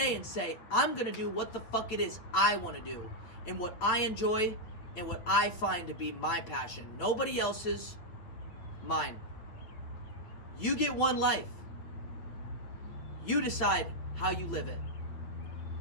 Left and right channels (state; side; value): late; right; 9.0 ms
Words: and say, I'm gonna do what the fuck it is I wanna do, and what I enjoy, and what I find to be my passion. Nobody else's, mine. You get one life. You decide how you live it.